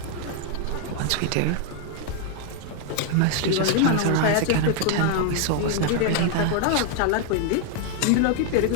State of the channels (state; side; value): different; both; correlation 0.00